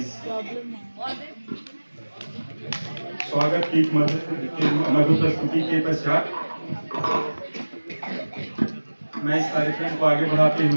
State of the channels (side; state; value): both; inverted; correlation -1.00